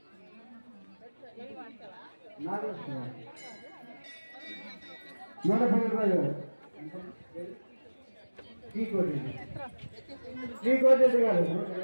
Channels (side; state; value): both; inverted; correlation -1.00